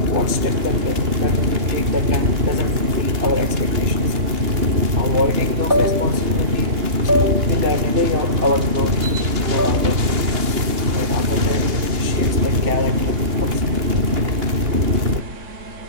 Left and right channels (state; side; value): late; left; 2.9 ms